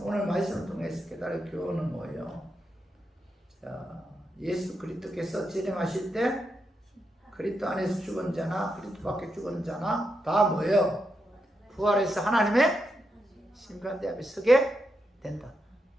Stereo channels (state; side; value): normal; both; correlation 0.84